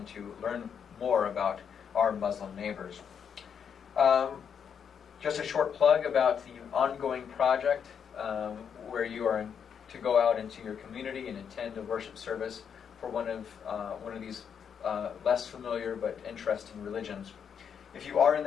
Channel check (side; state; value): right; quieter; 7.5 dB